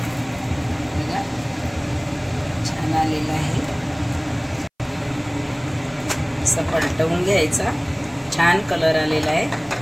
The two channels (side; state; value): both; identical; correlation 1.00